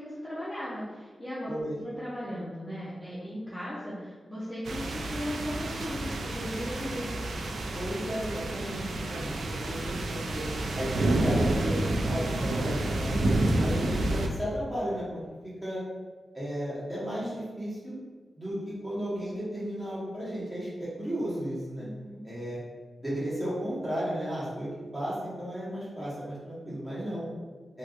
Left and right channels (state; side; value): normal; both; correlation 0.90